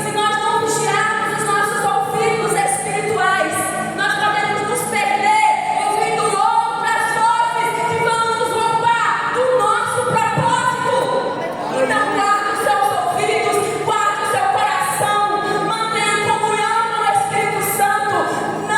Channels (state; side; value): noise; right; rumble, 30 dB below the sound